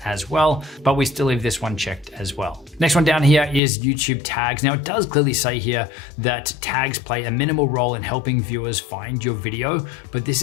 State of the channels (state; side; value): drops out; right; at 3.6 s